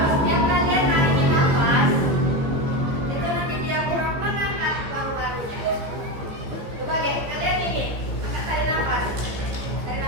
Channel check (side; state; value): left; late; 15 ms